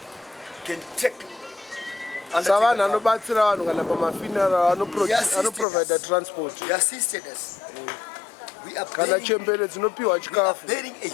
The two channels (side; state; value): right; drops out; at 5.7 s